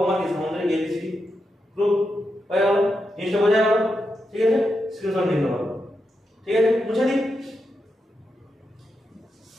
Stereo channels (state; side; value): normal; both; correlation 0.86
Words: আমার কি সামান্তরিক এবিসিডি। প্রুফ হয়ে গেল, জিনিসটা বোঝা গেল। ঠিক আছে, স্ক্রিনশট নিতে পারো। ঠিক আছে, মুছে দিই।